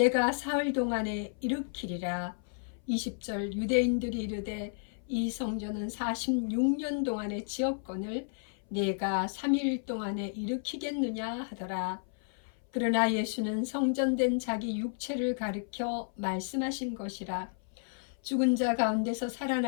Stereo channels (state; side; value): silent; right; 56 dB below the other